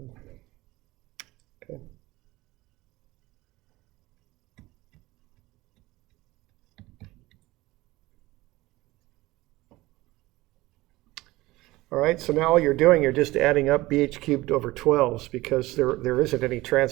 Okay. All right, so now all you're doing, you're just adding up bh cubed over 12s because there isn't any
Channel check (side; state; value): left; quieter; 19.2 dB